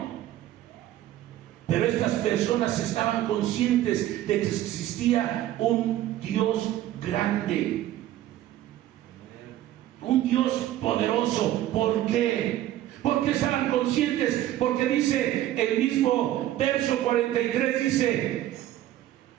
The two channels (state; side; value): quieter; left; 13.5 dB